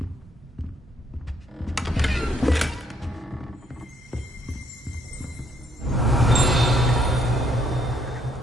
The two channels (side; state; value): both; normal; correlation 0.70